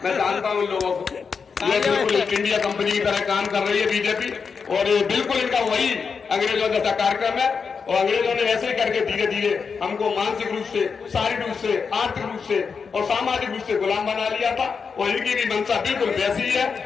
जानता हूं इन लोगों को। ये बिल्कुल ईस्ट इंडिया कंपनी की तरह काम कर रही है बीजेपी और ये बिल्कुल इनका वही अंग्रेजों जैसा कार्यक्रम है और अंग्रेजों ने ऐसे ही करके धीरे धीरे हमको मानसिक रूप से, शारीरिक रूप से, आर्थिक रूप से और सामाजिक रूप से गुलाम बना लिया था और इनकी भी मंशा बिल्कुल वैसी ही है।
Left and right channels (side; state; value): right; quieter; 5.6 dB